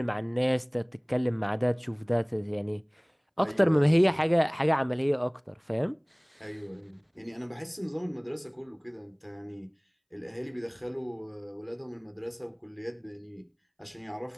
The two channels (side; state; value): both; identical; correlation 1.00